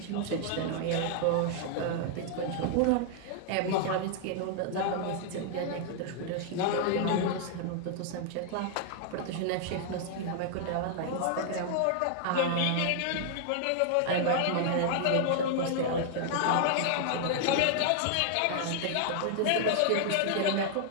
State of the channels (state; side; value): different; both; correlation 0.00